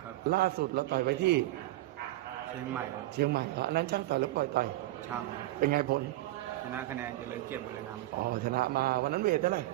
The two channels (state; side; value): quieter; left; 16.8 dB